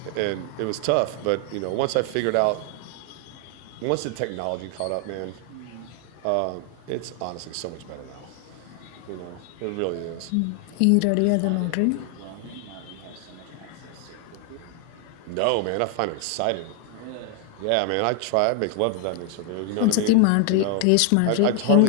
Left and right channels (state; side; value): different; both; correlation 0.00